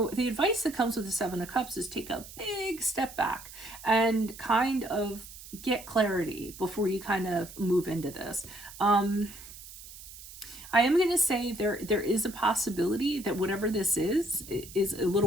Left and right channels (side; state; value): right; noise; hiss, 16 dB below the sound